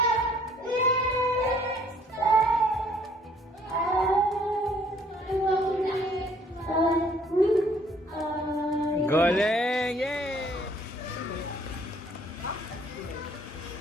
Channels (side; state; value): both; normal; correlation 0.60